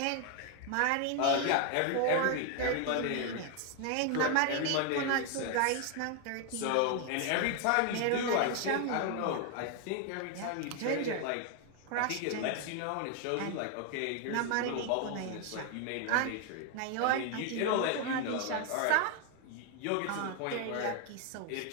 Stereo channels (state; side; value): different; both; correlation 0.01